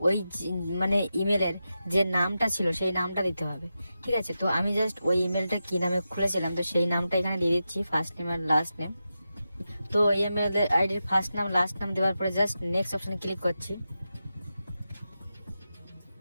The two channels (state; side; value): inverted; both; correlation -0.90